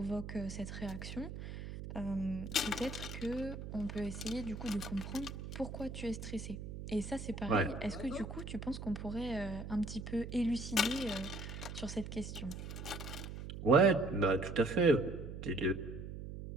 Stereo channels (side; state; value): right; noise; hum, 8 dB below the sound